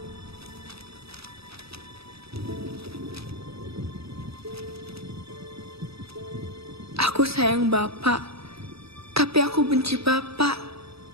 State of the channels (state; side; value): late; left; 0.77 ms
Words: Aku sayang Bapak, tapi aku benci Bapak.